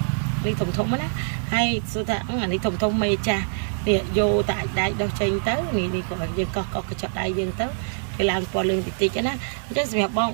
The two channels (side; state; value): left; silent; 62 dB below the other